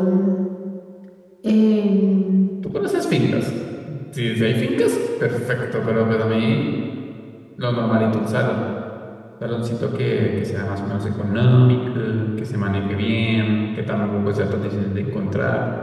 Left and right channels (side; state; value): both; identical; correlation 1.00